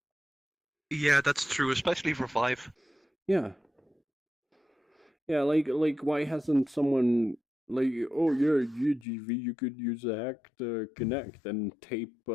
Yeah, that's true, especially for Vive. Yeah, like why hasn't someone like, oh yeah, UGV, you could use a hack to connect and tape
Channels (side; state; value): right; drops out; at 9.1 s